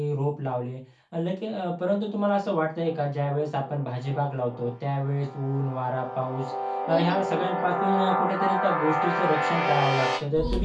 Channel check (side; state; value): both; identical; correlation 1.00